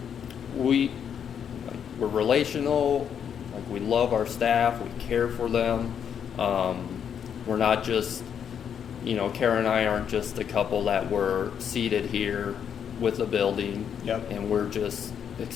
We're relational. Like, we love our staff. We care for them. We're not just, Karah and I aren't just a couple that were seated here with a building. Yep. And we're just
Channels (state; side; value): quieter; right; 8.1 dB